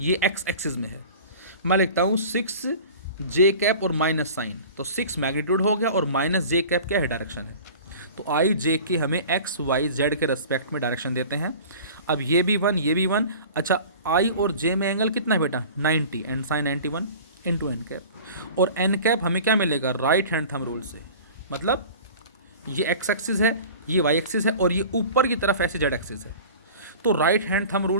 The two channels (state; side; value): inverted; both; correlation -0.40